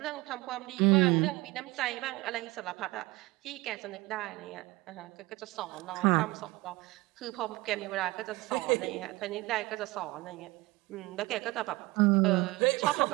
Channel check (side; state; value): left; quieter; 21.3 dB